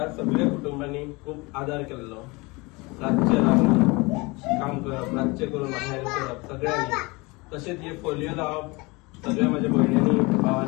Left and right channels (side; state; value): right; quieter; 25.2 dB